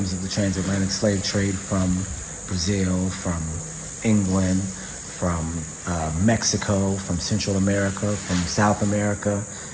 of the transatlantic slave trade from Brazil, from England, from Mexico, from Central America, from South America,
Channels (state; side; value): identical; both; correlation 1.00